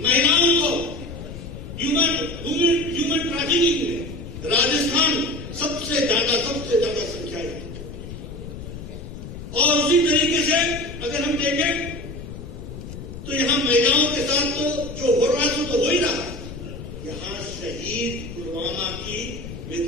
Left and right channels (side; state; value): left; noise; rumble, 11 dB below the sound